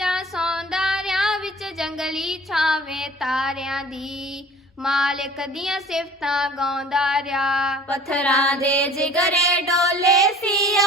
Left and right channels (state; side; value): normal; both; correlation 0.47